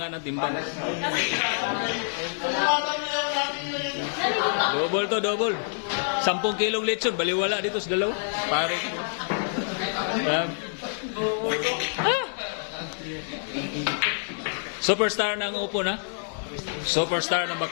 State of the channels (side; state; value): right; silent; digital silence